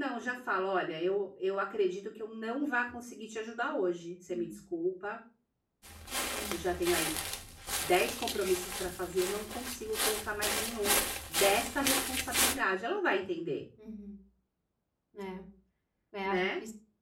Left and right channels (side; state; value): both; identical; correlation 1.00